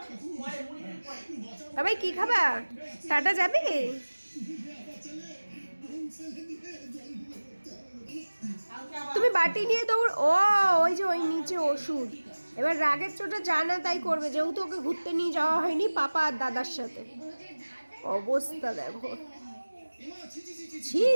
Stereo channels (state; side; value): inverted; both; correlation -1.00